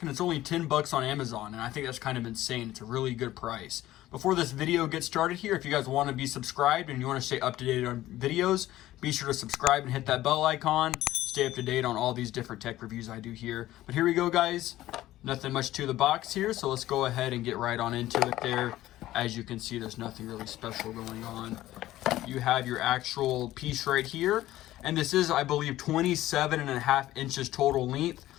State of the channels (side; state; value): right; quieter; 15.1 dB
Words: and it's only $10 on Amazon, and I think that's kind of insane. It's a really good price. Before this video gets started here, if you guys want to be subscribed and you want to stay up to date on videos, be sure to subscribe and hit that bell icon. Stay up to date on all these different tech reviews I do here. But here we go, guys. Nothing much to the box here, so let's go ahead and get right on into it there. As you can see, there's nothing really special going on. You have your actual piece right here, and this is, I believe, 27.5 inches total length,